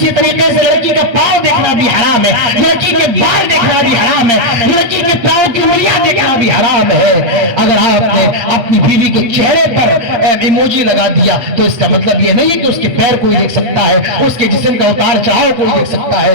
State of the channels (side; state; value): left; late; 8.2 ms